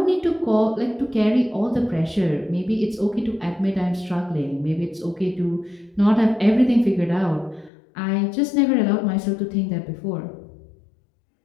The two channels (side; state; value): right; drops out; at 7.7 s